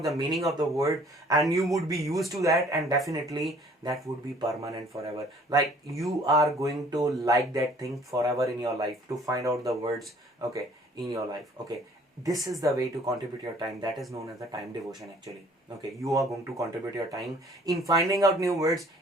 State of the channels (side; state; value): both; normal; correlation 0.56